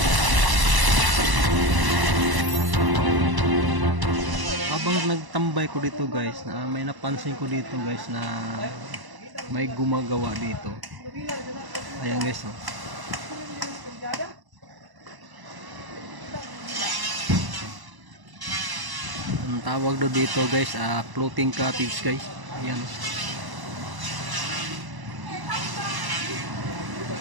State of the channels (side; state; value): left; late; 1.0 ms